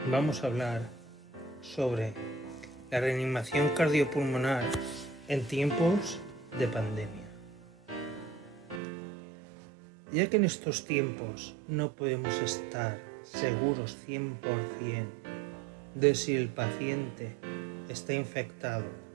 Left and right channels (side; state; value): left; drops out; at 8.8 s